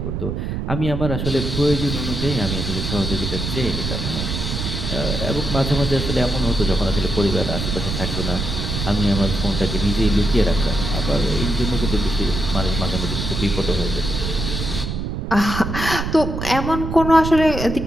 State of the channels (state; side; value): noise; right; rumble, 3 dB below the sound